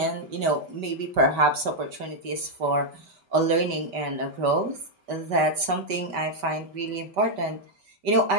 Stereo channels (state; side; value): late; left; 5.1 ms